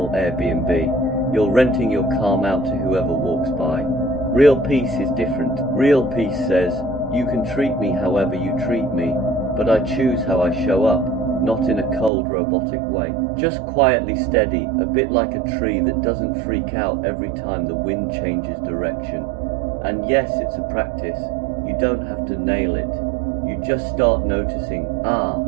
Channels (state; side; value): drops out; left; at 12.1 s